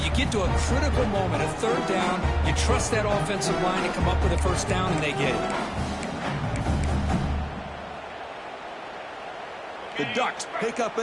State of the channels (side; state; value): both; identical; correlation 1.00